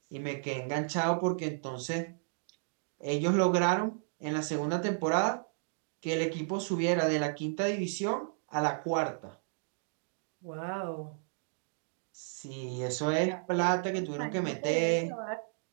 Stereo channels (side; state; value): left; silent; digital silence